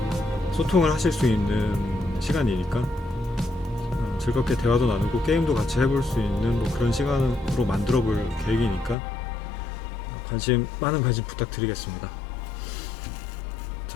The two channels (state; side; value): drops out; right; at 9.0 s